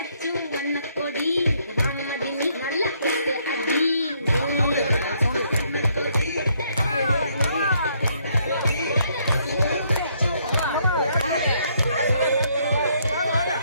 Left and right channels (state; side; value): inverted; both; correlation -0.70